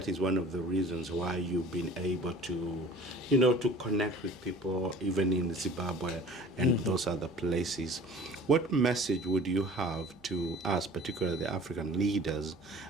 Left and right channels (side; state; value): right; noise; hum, 27 dB below the sound